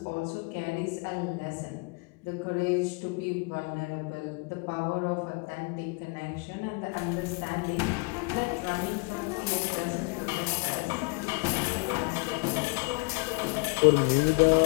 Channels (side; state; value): right; quieter; 30.1 dB